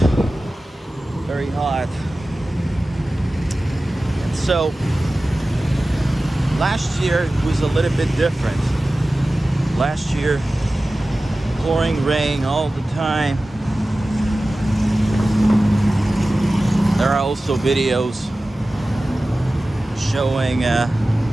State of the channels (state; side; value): normal; both; correlation 0.96